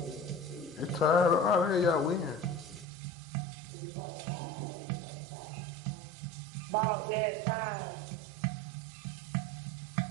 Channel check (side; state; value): left; drops out; at 2.9 s